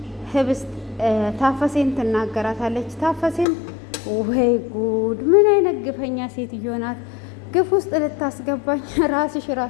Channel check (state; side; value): drops out; right; at 3.5 s